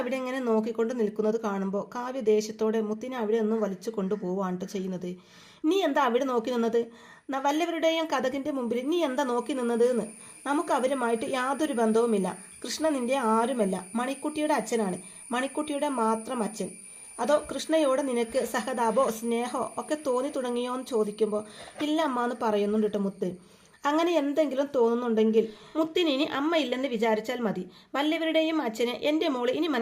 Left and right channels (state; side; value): identical; both; correlation 1.00